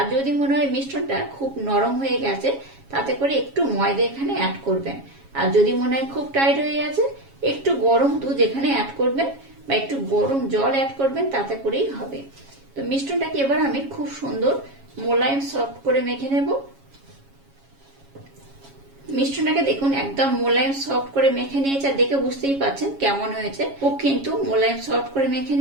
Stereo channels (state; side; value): late; left; 7.3 ms